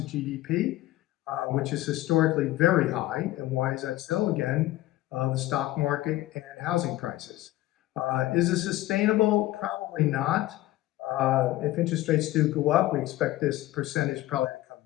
the GDP, which is historically very high. And why is that so? Again, the stock market and housing prices. Is it sustainable? Probably not. If interest rates do go up, we expect this percentage probably to come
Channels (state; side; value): quieter; right; 16.4 dB